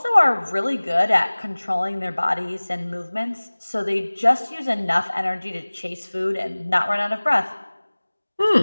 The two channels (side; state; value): both; inverted; correlation -1.00